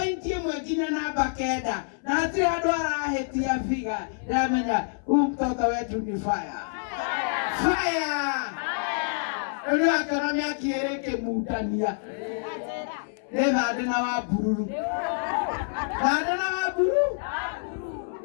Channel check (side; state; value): right; silent; 60 dB below the other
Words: ĩmwe nginya namba 9 na hatirĩ handũ arahĩtia figa ndĩramenya huyu mtoto wetu ni fire rĩu akĩona mĩaki ĩrĩ ĩkĩmutania nĩthande na Wambururu